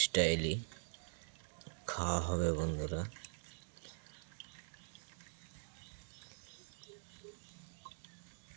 স্টাইলই খাওয়া হবে বন্ধুরা।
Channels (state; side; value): silent; left; digital silence